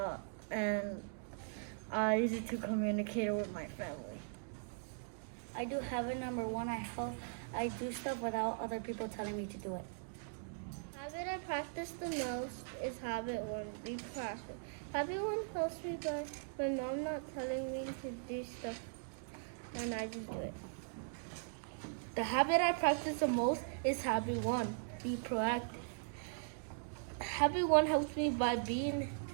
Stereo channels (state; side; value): silent; left; digital silence